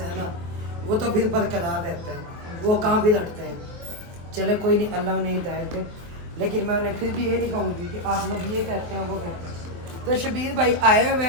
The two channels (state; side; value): late; left; 23 ms